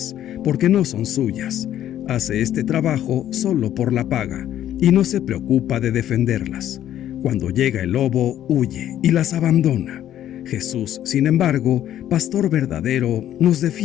porque no son suyas. Hace este trabajo solo por la paga, y no se preocupa de defenderlas. Cuando llega el lobo, huye y las abandona. Jesús, sin embargo, pastor verdadero, nos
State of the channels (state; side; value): quieter; right; 11.6 dB